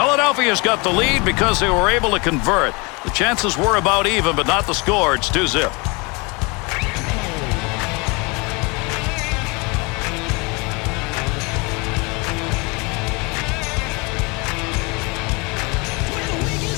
got the lead because they were able to convert. The chances were about even, but not the score. It's 2-0.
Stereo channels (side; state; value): right; quieter; 28.3 dB